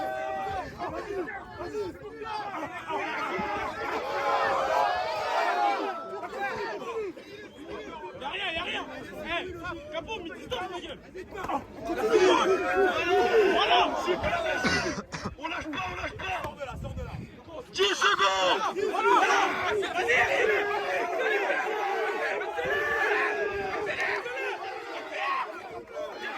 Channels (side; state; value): both; identical; correlation 1.00